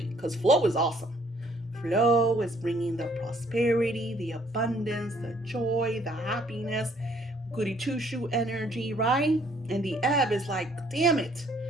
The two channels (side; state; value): both; normal; correlation 0.63